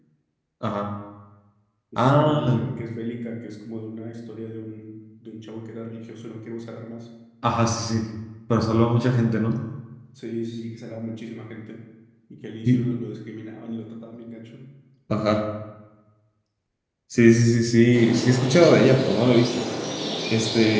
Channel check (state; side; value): identical; both; correlation 1.00